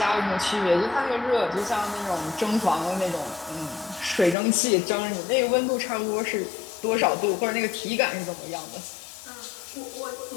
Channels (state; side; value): drops out; right; at 4.4 s